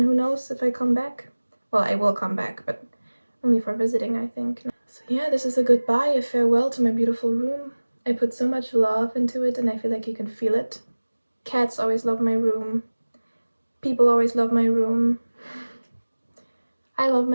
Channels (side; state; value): both; inverted; correlation -1.00